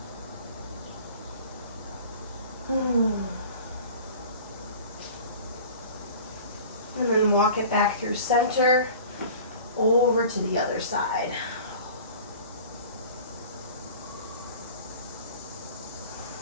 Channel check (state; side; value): inverted; both; correlation -0.42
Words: And then walk it back through center, over to the other side.